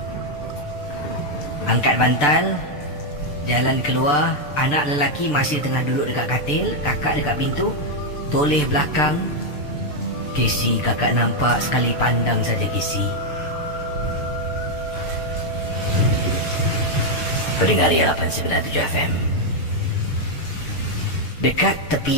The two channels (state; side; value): late; right; 6.8 ms